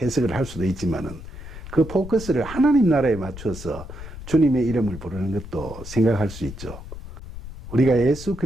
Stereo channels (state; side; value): noise; left; rumble, 12 dB below the sound